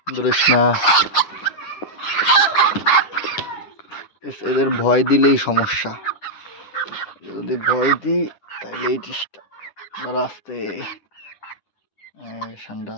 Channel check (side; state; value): right; late; 9.7 ms